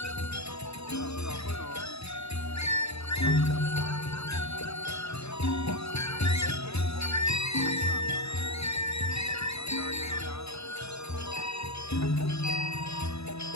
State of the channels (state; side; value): late; right; 0.79 ms